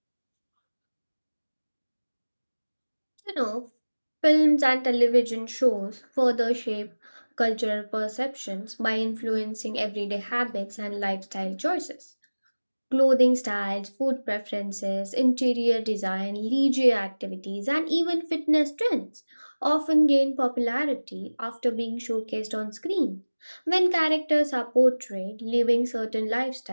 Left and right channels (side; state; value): both; inverted; correlation -1.00